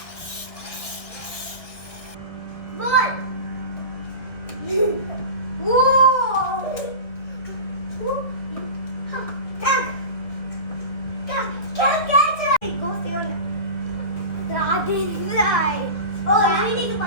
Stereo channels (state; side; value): late; right; 1.6 ms